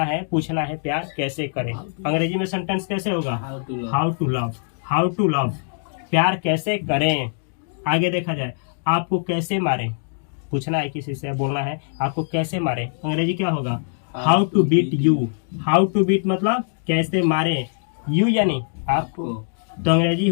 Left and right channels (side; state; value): right; silent; digital silence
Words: है, पूछना है प्यार कैसे करें, अंग्रेजी में सेंटेंस कैसे होगा, how to love, how to love, प्यार कैसे करें। आगे देखा जाए, आपको कैसे मारे। पूछना है किसी से, बोलना है आपको कैसे मारे, अंग्रेजी क्या होगा, how to beat you. How to beat मतलब कैसे मारे, यू यानी आपको, तो अंग्रेजी